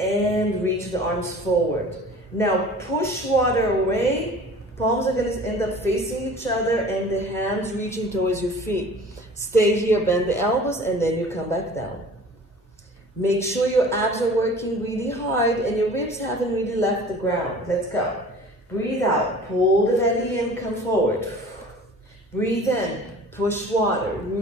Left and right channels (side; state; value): both; normal; correlation 0.44